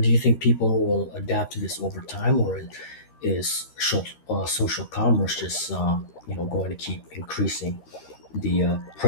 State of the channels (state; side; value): late; right; 13 ms